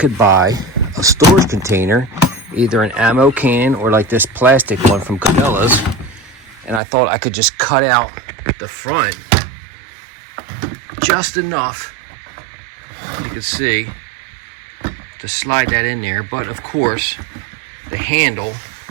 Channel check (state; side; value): drops out; left; at 6.8 s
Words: buy a storage container, either an ammo can or like this plastic one from Cabela's, and I thought I could just cut out the front just enough, you can see, to slide that in there. But of course, the handle,